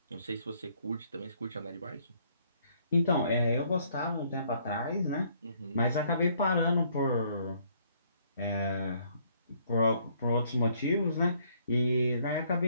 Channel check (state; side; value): inverted; both; correlation -0.66